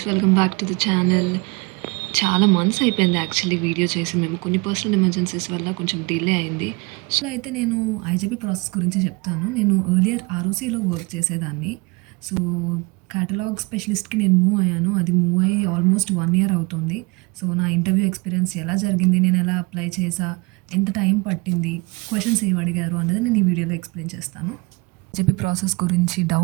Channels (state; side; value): quieter; left; 26.7 dB